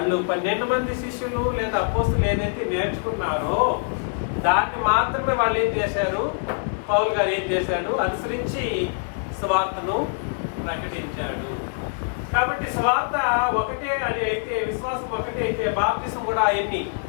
12 మంది శిష్యులు లేదా అపోస్తలులు ఏదైతే నేర్చుకున్నారో దాన్ని మాత్రమే వాళ్ళు ఏం చేశారు, పౌలు గారు ఏం చేశాడు, అనుసరించి సువార్తను ప్రకటించాడు. కాబట్టి సువార్త ఒకటే అని అయితే, విశ్వాసం ఒకటే అయితే బాప్తిసం కూడా ఎన్ని?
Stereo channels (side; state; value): right; silent; 62 dB below the other